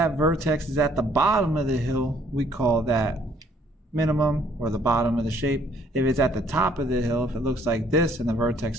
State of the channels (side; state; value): both; normal; correlation 0.63